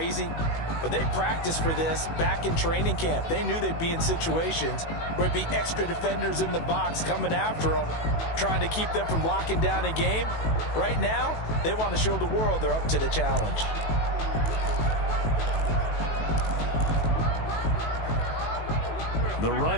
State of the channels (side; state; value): right; late; 18 ms